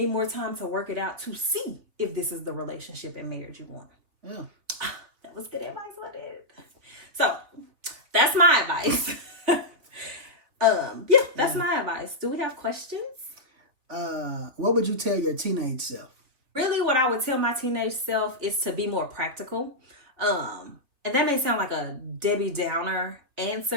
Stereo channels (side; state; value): left; late; 3.4 ms